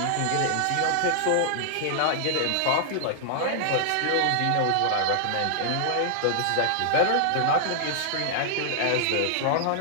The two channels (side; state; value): both; different; correlation -0.01